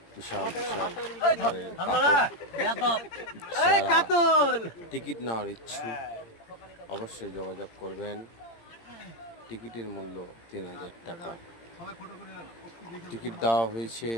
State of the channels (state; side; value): late; right; 18 ms